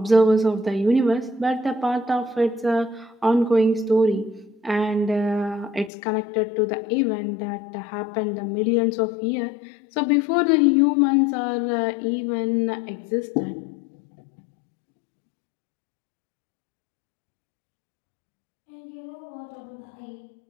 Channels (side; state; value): right; drops out; at 5.9 s